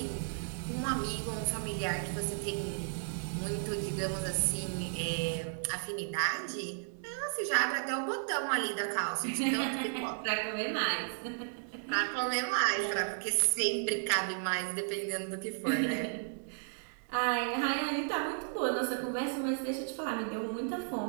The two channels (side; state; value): left; silent; 55 dB below the other